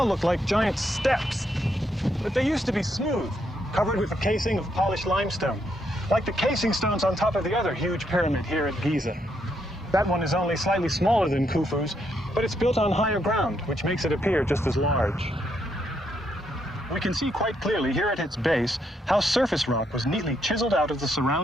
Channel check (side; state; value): both; normal; correlation 0.77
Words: look like giant steps, but they used to be smooth, covered with a casing of polished limestone, like the casing stones on top of the other huge pyramid here at Giza. That one is only slightly smaller than Khufu's, but it's built on higher ground, which makes it appear just as large. We can see quite clearly here at its base how surface rock was neatly chiseled out of the